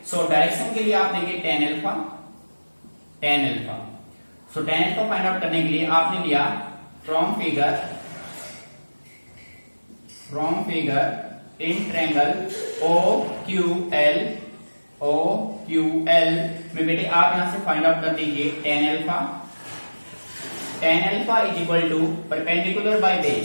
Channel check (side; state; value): both; inverted; correlation -1.00